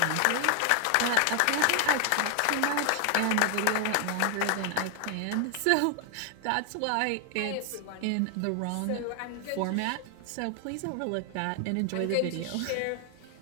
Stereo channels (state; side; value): different; both; correlation 0.00